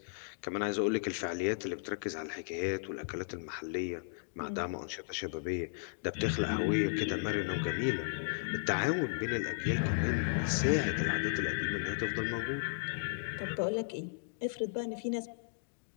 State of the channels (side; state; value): right; silent; digital silence